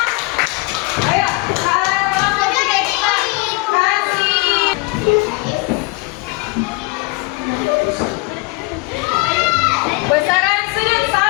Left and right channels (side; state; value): right; quieter; 25.1 dB